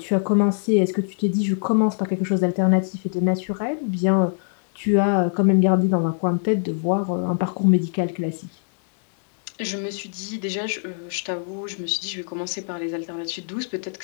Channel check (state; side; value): silent; right; digital silence